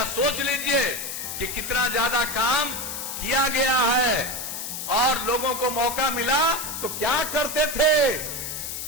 सोच लीजिए कि कितना ज्यादा काम किया गया है। और लोगों को मौका मिला तो क्या करते थे,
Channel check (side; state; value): left; noise; hiss, 6 dB below the sound